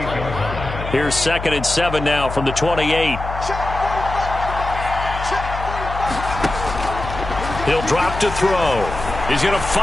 Here's 2nd and 7 now from the 28. He'll drop to throw. He's going to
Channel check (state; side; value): noise; left; hum, 8 dB below the sound